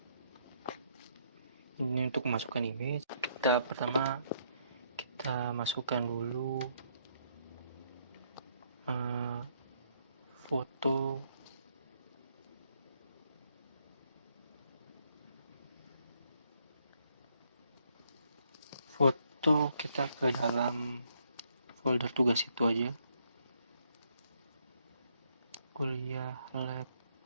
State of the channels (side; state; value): both; inverted; correlation -0.72